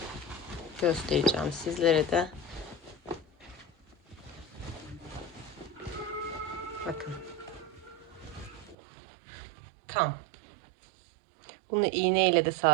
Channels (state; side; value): drops out; left; at 8.8 s